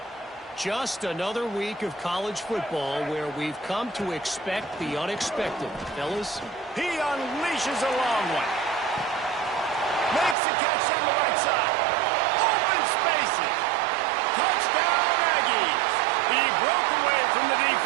Just another week of college football where we've come to expect the unexpected. Fellas? He unleashes a long one. Makes the catch on the right side. Open spaces. Touchdown, Aggies. He broke away from the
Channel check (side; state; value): left; drops out; at 10.4 s